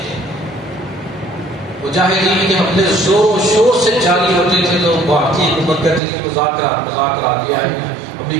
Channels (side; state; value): left; drops out; at 6.0 s